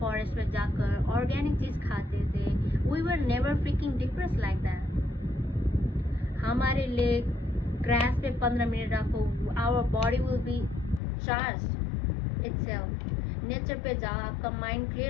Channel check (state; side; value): drops out; right; at 11.0 s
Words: में जाकर ऑर्गेनिक चीज खाते थे. We were never freaking depressed like that. हमारे लिए ग्रास पे 15 मिनट रखो, our body will be charged itself. Nature पे जाओ, आपका माइंड